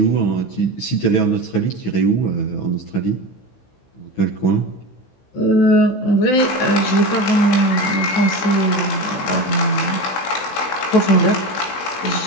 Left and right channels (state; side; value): late; right; 16 ms